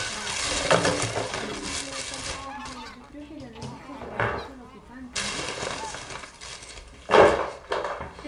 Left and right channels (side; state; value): both; identical; correlation 1.00